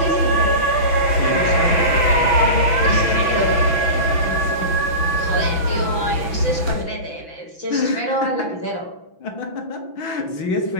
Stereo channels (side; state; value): right; late; 6.0 ms